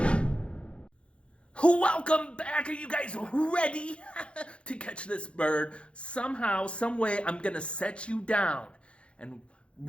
Welcome back. Are you guys ready to catch this bird? Somehow, some way, I'm gonna set you down, and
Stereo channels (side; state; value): right; late; 0.059 ms